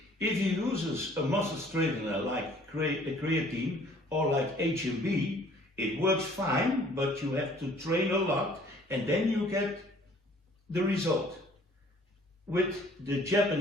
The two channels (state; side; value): normal; both; correlation 0.56